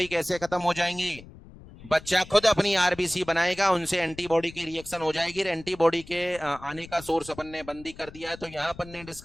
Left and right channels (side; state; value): left; noise; rumble, 19 dB below the sound